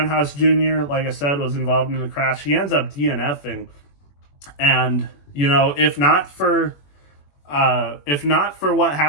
Jr., like I said, was involved in the crash. He ends up DNFing. And, you know, if not for what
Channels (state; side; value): late; right; 21 ms